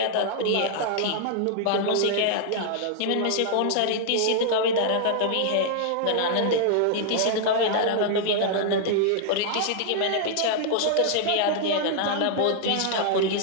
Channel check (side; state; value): both; different; correlation -0.01